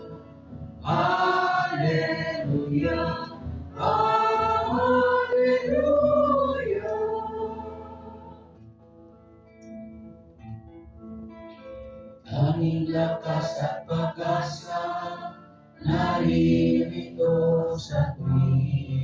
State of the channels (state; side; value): identical; both; correlation 1.00